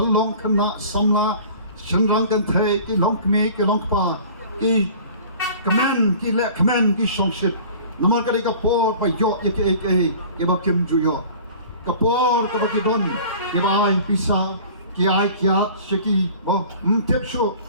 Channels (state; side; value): inverted; both; correlation -0.45